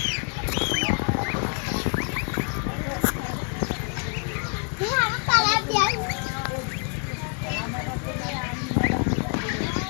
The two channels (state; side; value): quieter; right; 38.8 dB